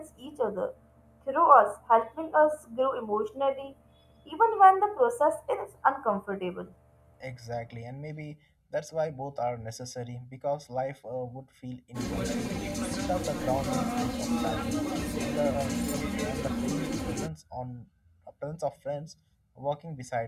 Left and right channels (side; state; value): both; identical; correlation 1.00